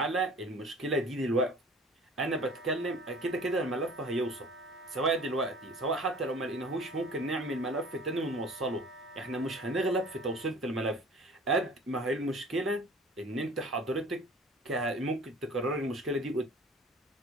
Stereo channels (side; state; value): both; normal; correlation 0.46